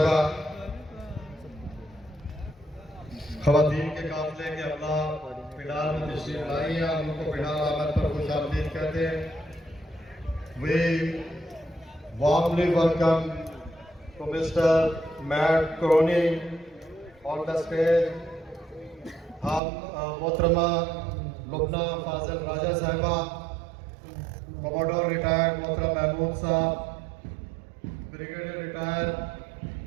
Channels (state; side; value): drops out; left; at 19.6 s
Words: ख़वातीन के काफ़िले के अमला पिंडाल में तशरीफ़ लाई हैं, हम लोग को पिंडाल आमद पर खुश आमदीद कहते हैं। We warmly welcome to Mr. Matt Crony on the stage. हम मोहतरमा लुबना फाजिल राजा साहिबा, कमोडोर रिटायर्ड मोहतरम महमूद साहब, ब्रिगेडियर रिटायर्ड